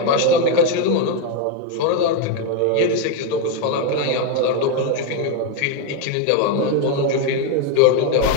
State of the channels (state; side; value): different; both; correlation 0.02